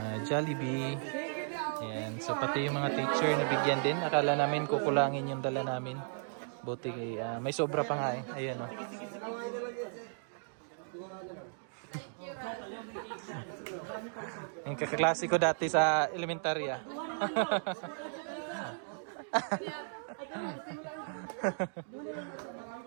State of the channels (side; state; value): left; silent; digital silence